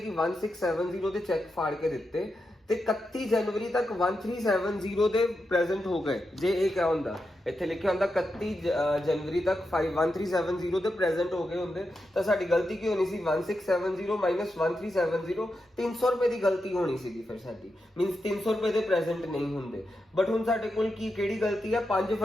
1670 ਦੇ ਚੈੱਕ ਫਾੜ ਕੇ ਦਿੱਤੇ ਤੇ 31 ਜਨਵਰੀ ਤੱਕ 1370 ਦੇ ਪ੍ਰੈਜ਼ੈਂਟ ਹੋ ਗਏ, ਜੇ ਇਹ ਕਿਹਾ ਹੁੰਦਾ, ਇੱਥੇ ਲਿਖਿਆ ਹੁੰਦਾ 31 ਜਨਵਰੀ ਤੱਕ 1370 ਦੇ ਪ੍ਰੈਜ਼ੈਂਟ ਹੋ ਗਏ ਹੁੰਦੇ ਤਾਂ ਸਾਡੀ ਗਲਤੀ ਕੀ ਹੋਣੀ ਸੀ, 1670 ਮਾਈਨਸ 1370, 300 ਰੁਪਏ ਦੀ ਗਲਤੀ ਹੋਣੀ ਸੀਗੀ ਫਿਰ ਸਾਡੀ, ਮੀਨਸ 300 ਰੁਪਏ ਦੇ ਪ੍ਰੈਜ਼ੈਂਟ ਨਹੀਂ ਹੁੰਦੇ। ਬਟ ਹੁਣ ਸਾਡੇ ਕੋਲ ਕਿਹੜੀ ਗਲਤੀ ਹੈ, 5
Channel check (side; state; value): both; normal; correlation 0.87